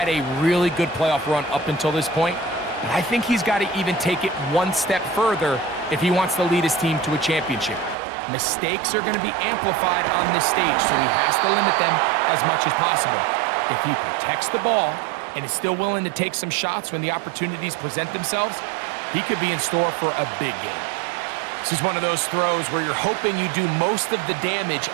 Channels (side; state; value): left; drops out; at 8.0 s